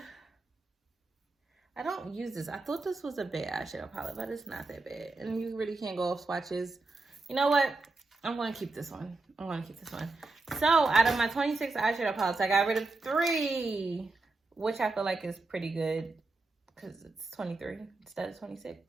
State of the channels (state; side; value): quieter; left; 3.5 dB